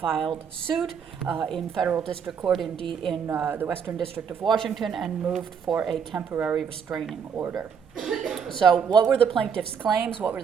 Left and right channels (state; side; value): quieter; left; 6.9 dB